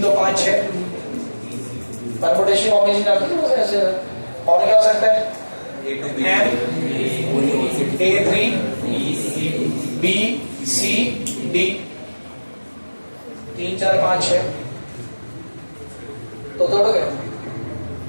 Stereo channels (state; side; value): inverted; both; correlation -1.00